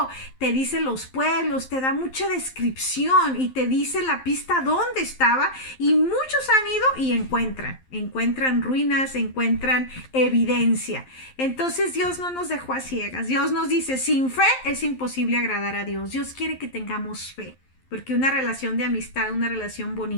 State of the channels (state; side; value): late; right; 11 ms